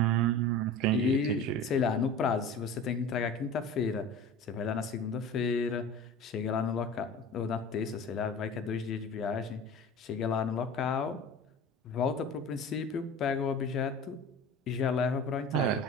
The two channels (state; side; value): normal; both; correlation 0.37